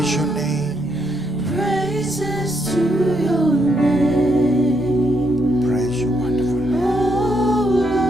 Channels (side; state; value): both; normal; correlation 0.77